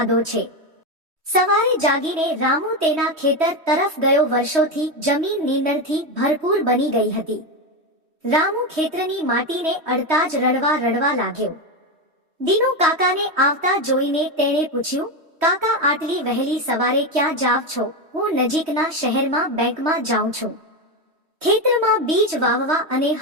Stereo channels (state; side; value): late; left; 3.1 ms